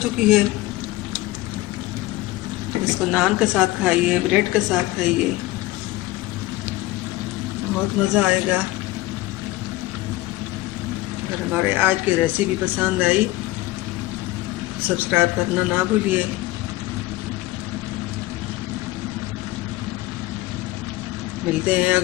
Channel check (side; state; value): right; quieter; 18.0 dB